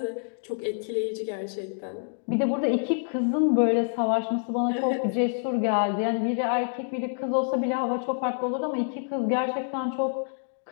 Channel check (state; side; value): silent; right; digital silence